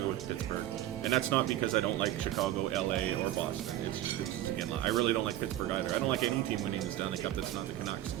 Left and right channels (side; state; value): left; quieter; 13.5 dB